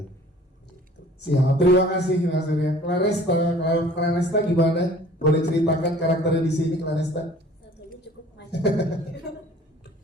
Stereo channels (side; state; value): both; normal; correlation 0.50